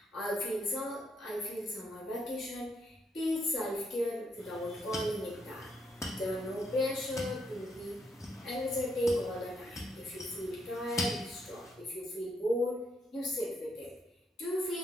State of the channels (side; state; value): both; normal; correlation 0.76